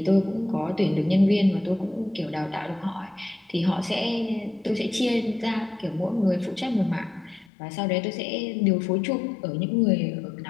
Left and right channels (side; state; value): right; drops out; at 7.5 s